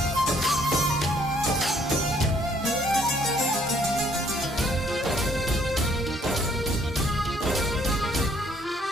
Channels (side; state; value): both; normal; correlation 0.64